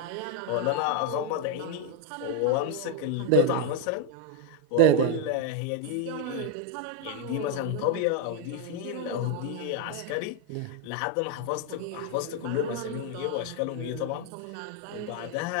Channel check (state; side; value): different; both; correlation 0.01